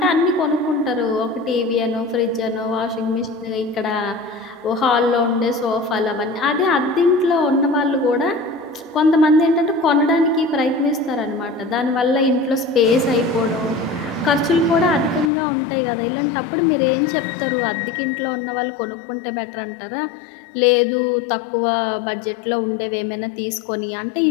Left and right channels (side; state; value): right; drops out; at 15.3 s